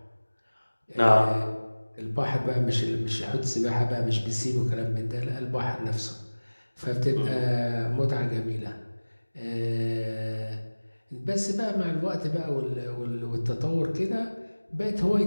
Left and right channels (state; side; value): inverted; both; correlation -1.00